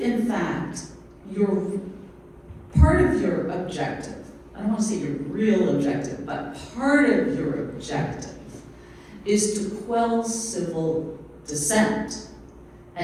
in fact, part of your objective, I don't want to say your real objective, but part of your objective is to quell civil dissent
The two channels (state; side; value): identical; both; correlation 1.00